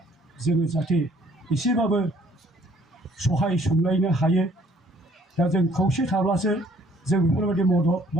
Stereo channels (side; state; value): both; normal; correlation 0.60